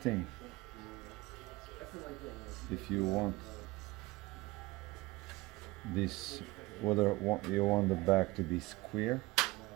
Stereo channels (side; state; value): left; quieter; 20.9 dB